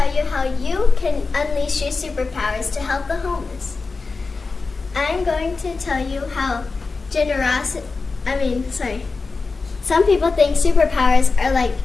you how you can unleash your superpowers to help the homeless. I'm going to tell you how some people think superpowers are like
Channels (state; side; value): quieter; right; 4.2 dB